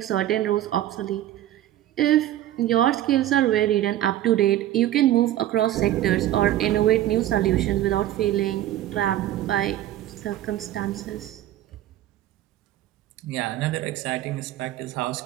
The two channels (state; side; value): quieter; left; 13.3 dB